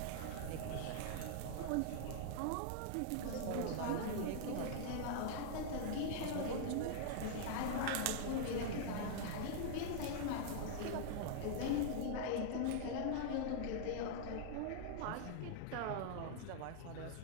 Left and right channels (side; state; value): both; different; correlation -0.01